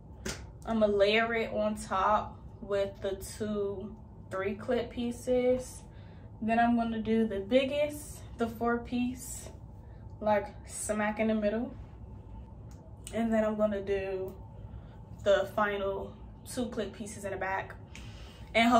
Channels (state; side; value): identical; both; correlation 1.00